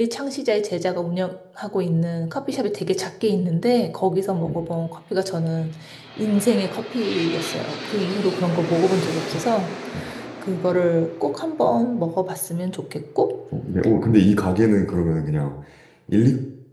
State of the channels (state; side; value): identical; both; correlation 1.00